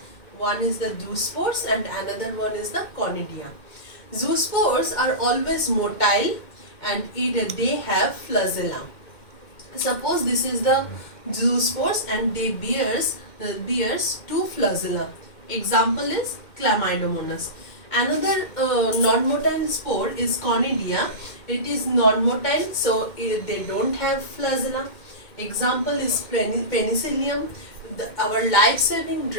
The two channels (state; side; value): late; right; 2.1 ms